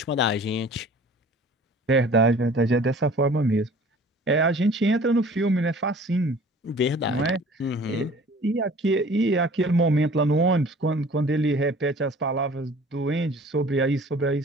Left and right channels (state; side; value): normal; both; correlation 0.48